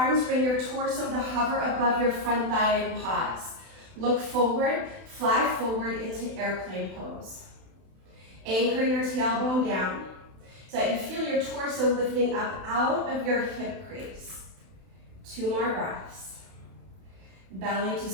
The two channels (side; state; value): left; late; 31 ms